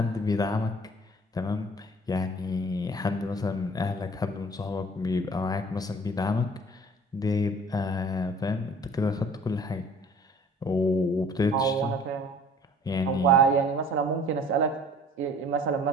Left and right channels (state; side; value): normal; both; correlation 0.50